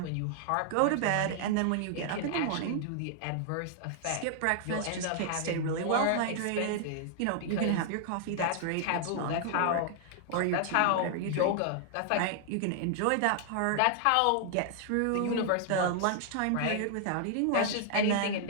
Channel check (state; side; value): different; both; correlation -0.01